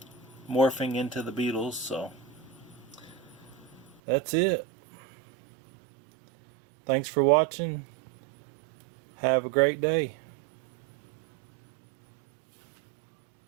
morphing into the beetles. So that's it. Thanks for watching. Have a great day.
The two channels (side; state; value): left; drops out; at 4.0 s